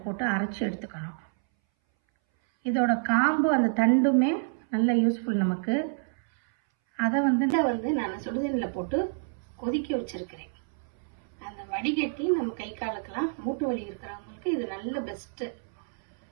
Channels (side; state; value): left; silent; 59 dB below the other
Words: போட்டு அரைச்சி எடுத்துக்கணும். இதோட காம்பு அந்த தண்டுமே நல்ல யூஸ்ஃபுல் நமக்கு. அதை வந்து நான் சுடுதண்ணில் போட்டு கொதிக்க வச்சுருக்கிறேன். அந்த வடிகட்டி நம்ம கை காலுக்கெல்லாம் மூட்டு வலி இருக்கிறவங்களுக்கு இது நல்ல பெஸ்ட்டு.